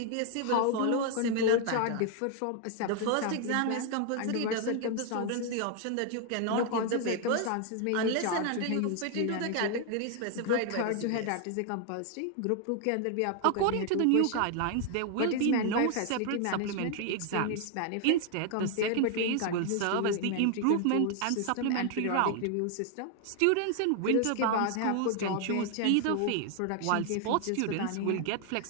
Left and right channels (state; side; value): different; both; correlation 0.00